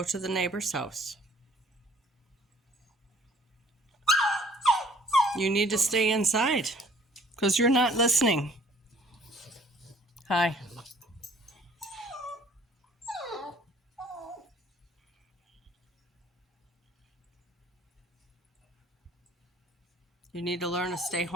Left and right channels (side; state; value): both; normal; correlation 0.58